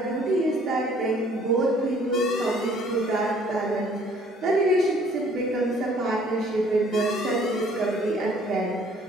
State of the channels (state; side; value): normal; both; correlation 0.58